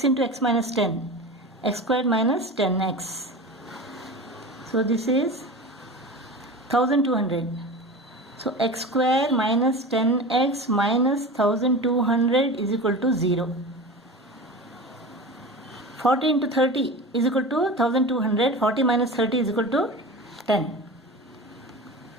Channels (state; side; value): normal; both; correlation 0.31